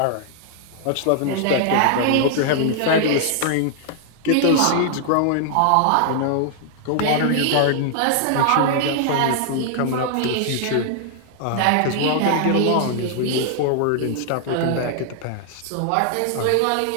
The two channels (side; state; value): both; different; correlation 0.00